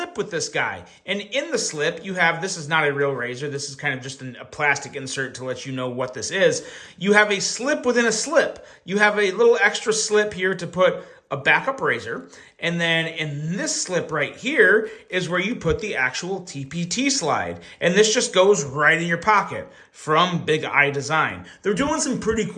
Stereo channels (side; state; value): both; identical; correlation 1.00